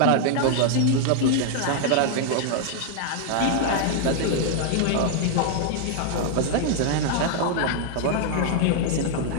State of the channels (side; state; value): both; different; correlation 0.00